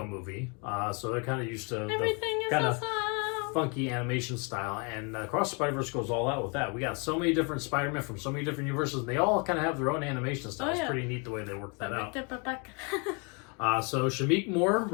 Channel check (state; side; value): quieter; right; 33.7 dB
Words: movie. So they're kind of used to Everything the kind is of awesome. funky animation style. And Across the Spider-Verse goes all out with that. We got so many different Spider-Man from so many different universes, and they all kind of have their own animation style. It's pretty neat the way they work that out. So Shamik Moore